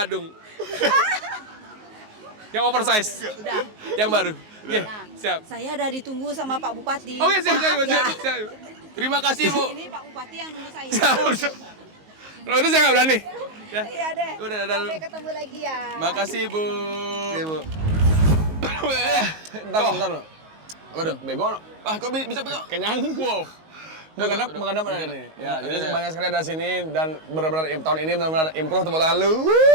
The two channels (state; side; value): late; left; 19 ms